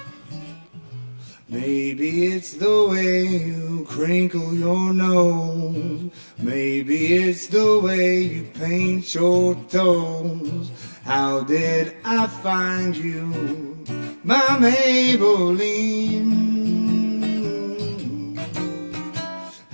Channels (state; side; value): inverted; both; correlation -1.00